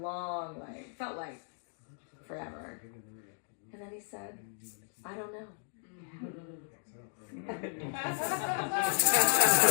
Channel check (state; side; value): silent; right; digital silence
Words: felt like forever. And then he said, I don't know. We